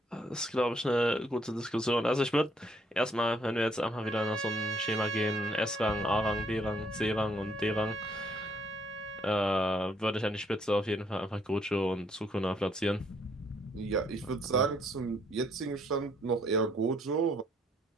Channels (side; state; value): both; normal; correlation 0.68